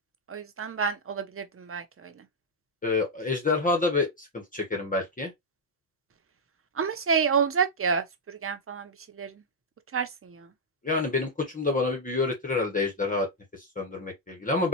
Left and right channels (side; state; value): both; normal; correlation -0.02